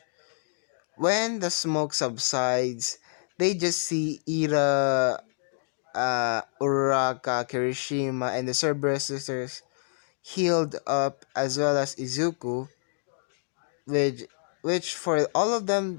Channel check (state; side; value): silent; right; digital silence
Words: when the smoke subsides, they just see Ira, Uraraka, Kirishima, and the Cerberus sisters healed up, as well as Izuku. which which for all of